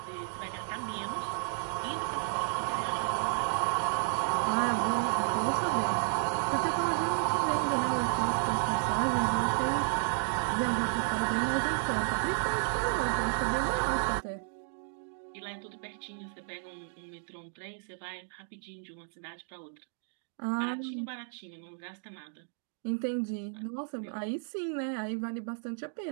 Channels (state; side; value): silent; left; digital silence